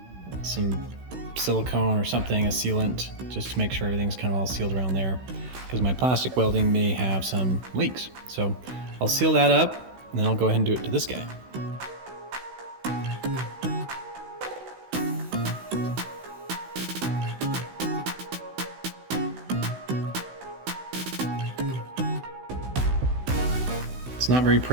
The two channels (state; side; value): late; left; 16 ms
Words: some silicone or something, a sealant, just to make sure everything's kind of all sealed around there, because my plastic welding may have some leaks. So I'll seal that up, and then I'll go ahead and do it to this guy. It's not very